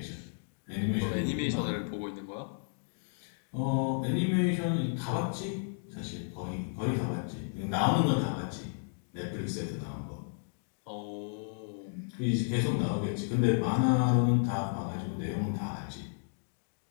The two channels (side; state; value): right; silent; digital silence